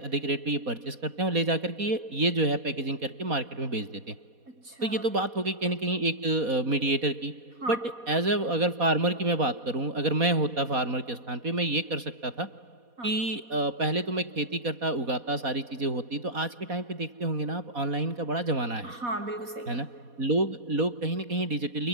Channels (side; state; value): left; late; 4.2 ms